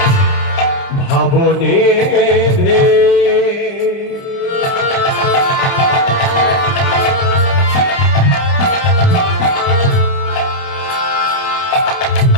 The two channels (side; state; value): right; late; 29 ms